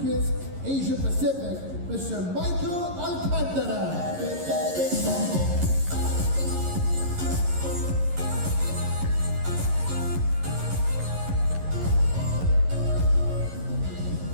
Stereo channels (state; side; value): late; left; 11 ms